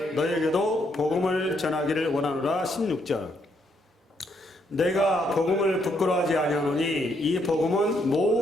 너에게도 복음을 전하기를 원하노라. 16절. 내가 복음을 부끄러워하지 아니하노니 이 복음은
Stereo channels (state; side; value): normal; both; correlation 0.74